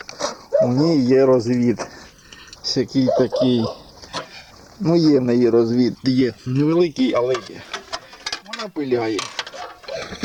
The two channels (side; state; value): both; identical; correlation 1.00